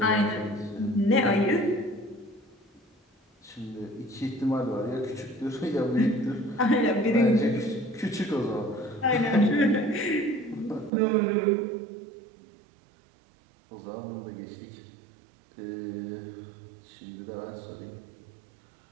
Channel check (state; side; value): drops out; left; at 10.9 s